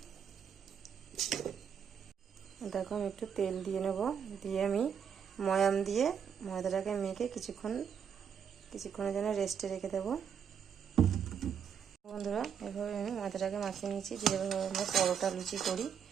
দেখো আমি একটু তেল দিয়ে নেব, দিয়ে আমি ময়াম দিয়ে ময়দাটাকে মেখে কিছুক্ষণের জন্য রেস্টে রেখে দেবো। বন্ধুরা, এভাবে আমি ময়দাটাকে মাখিয়ে নিয়েছি, যেভাবে আমরা পরোটা লুচি করি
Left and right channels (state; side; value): quieter; left; 7.7 dB